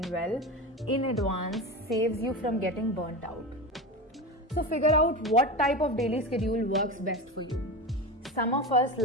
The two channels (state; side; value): normal; both; correlation 0.24